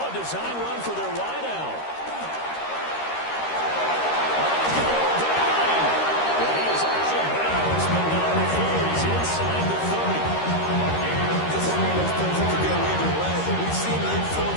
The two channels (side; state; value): right; late; 13 ms